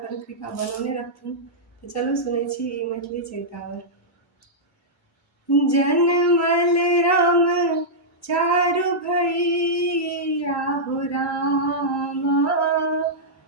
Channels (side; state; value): both; normal; correlation -0.10